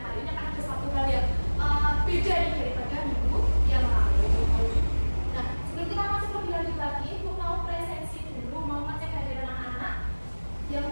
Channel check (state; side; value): inverted; both; correlation -1.00